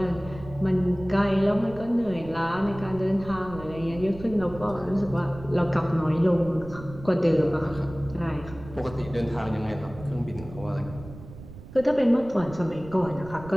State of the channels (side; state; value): right; noise; rumble, 16 dB below the sound